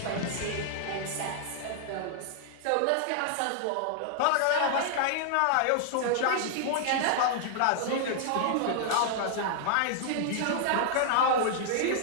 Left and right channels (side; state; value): both; different; correlation 0.00